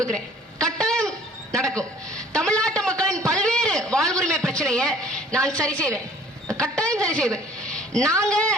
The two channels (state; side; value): normal; both; correlation 0.53